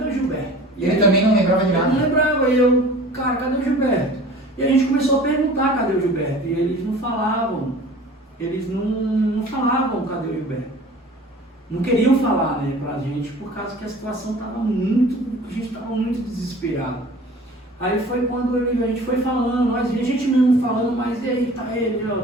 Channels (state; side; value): normal; both; correlation 0.44